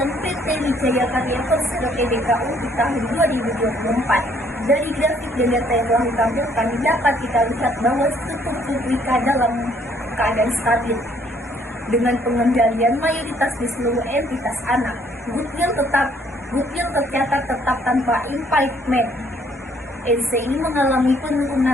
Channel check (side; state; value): both; normal; correlation 0.64